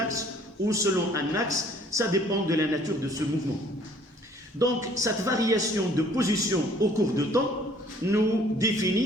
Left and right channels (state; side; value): normal; both; correlation 0.57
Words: ou selon un axe. Ça dépend de la nature de ce mouvement. Donc, cette variation de position au cours de temps nous